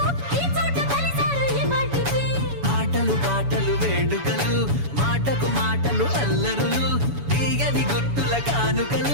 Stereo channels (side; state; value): left; late; 7.1 ms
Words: ఈ చోట కలిసారు ఈ వాటికి ఆటలు పాటలు వేడుకలు మాటకు మాటలు అల్లరులు తీయని గుర్తుల